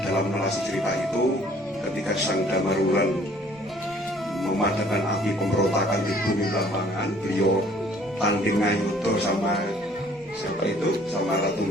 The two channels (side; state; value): both; normal; correlation 0.57